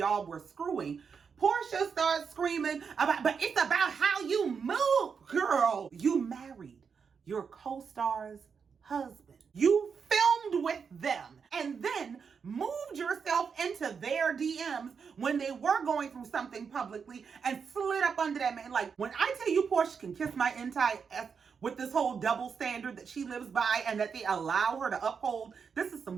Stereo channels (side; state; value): left; quieter; 6.1 dB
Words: were screwing, Porsha starts screaming about, but it's about how you move, girl. You married your co-star's husband. You filmed with them and then moved yourself into their DMs when they were going through something publicly and slid up under that man. Like, when I tell you Porsha can kiss my entire ass with this whole double standard that she lives by and that they allow her to uphold, this is some